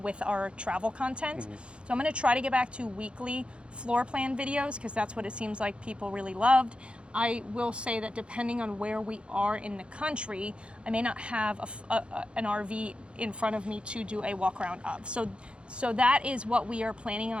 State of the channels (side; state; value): left; late; 0.057 ms